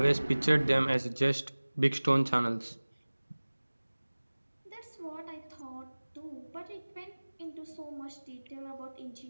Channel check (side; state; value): both; inverted; correlation -1.00